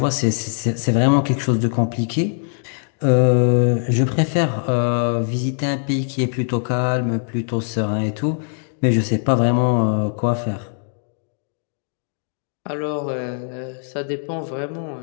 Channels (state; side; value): silent; right; digital silence